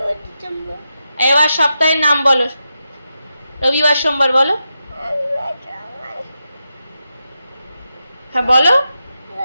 December. এবার সপ্তাহের নাম বলো। রবিবার সোমবার বলো। হ্যাঁ বলো।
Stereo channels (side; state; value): both; inverted; correlation -0.88